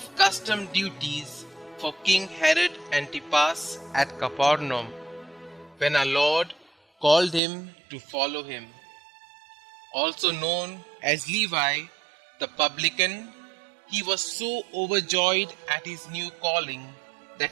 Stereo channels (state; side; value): drops out; left; at 7.4 s